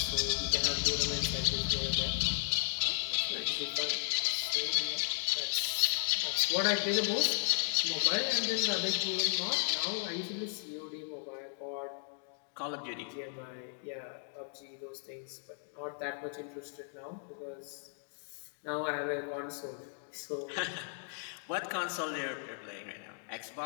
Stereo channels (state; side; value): silent; right; 54 dB below the other